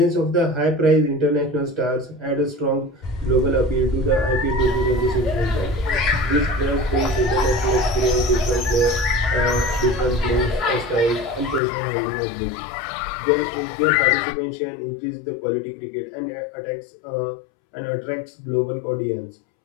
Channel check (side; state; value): right; drops out; at 11.6 s